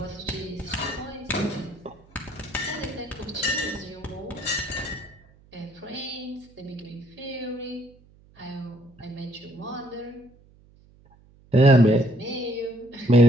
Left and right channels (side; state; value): right; noise; hum, 27 dB below the sound